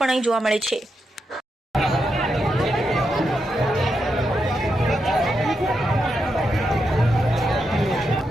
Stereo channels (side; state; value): both; normal; correlation 0.84